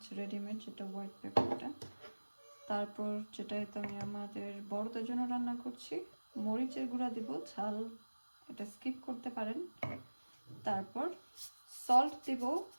রেডিমেড যেটা হোয়াইট পেপারটা, তারপর যেটা তো আমি আমাদের বড়দের জন্য রান্না করছি মরিচের গুঁড়া দিব, ঝাল এটা স্কিপ করতে পারেন। তারপর সল্ট দিব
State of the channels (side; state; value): both; inverted; correlation -1.00